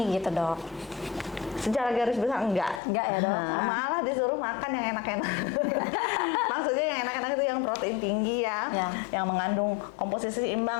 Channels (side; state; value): right; drops out; at 2.8 s